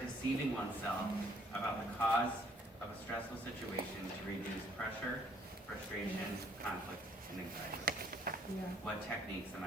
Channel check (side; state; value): both; normal; correlation 0.63